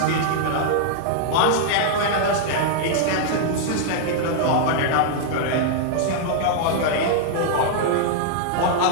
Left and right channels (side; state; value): both; different; correlation -0.01